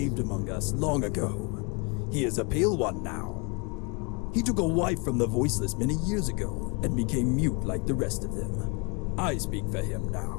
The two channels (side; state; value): right; quieter; 32.1 dB